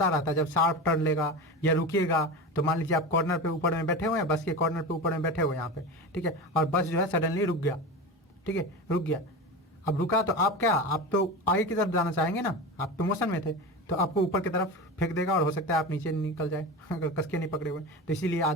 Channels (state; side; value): normal; both; correlation 0.26